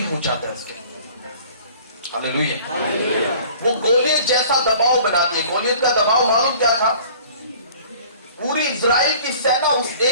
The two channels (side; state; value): both; inverted; correlation -0.49